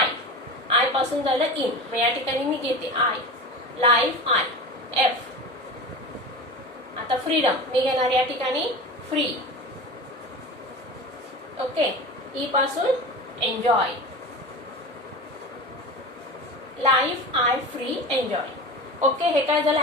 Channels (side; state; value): both; normal; correlation 0.30